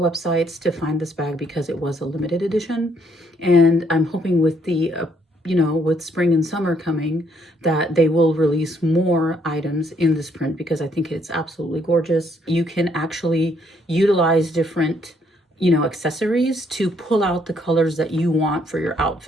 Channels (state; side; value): normal; both; correlation 0.69